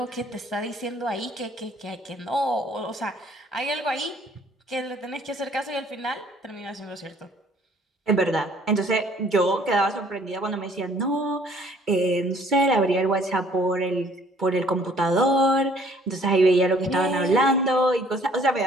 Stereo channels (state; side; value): normal; both; correlation 0.58